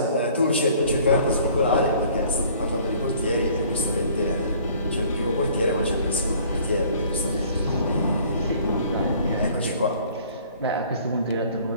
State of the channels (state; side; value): inverted; both; correlation -0.54